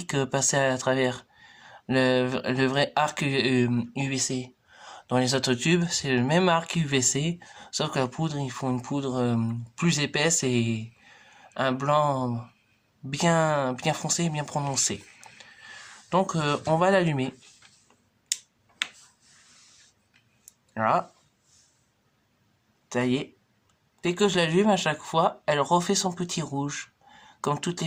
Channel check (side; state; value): both; identical; correlation 1.00